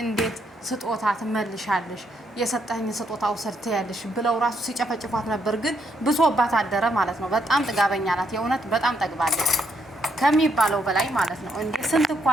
ስጦታ ትመልሻለሽ? የሰጠኝ ስጦታ ውሰድ ያለሽ ብለው ራሱ ሲጨፈጭፏት ነበር። ግን ብሶባት አደረ ማለት ነው። በጣም ጥጋበኛ ናት። የእውነት በጣም ጠግባለች ከሚባለው በላይ ማለት ነው። እንዴ ስንት እኮ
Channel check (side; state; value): both; normal; correlation 0.75